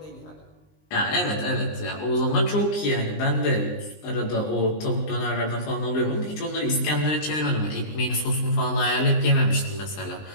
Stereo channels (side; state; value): right; late; 19 ms